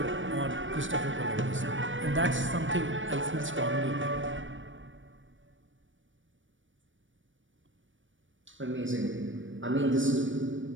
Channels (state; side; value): late; left; 0.56 ms